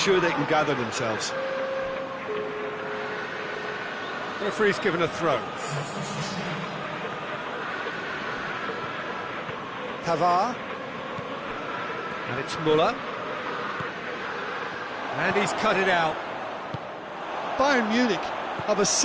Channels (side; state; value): both; identical; correlation 1.00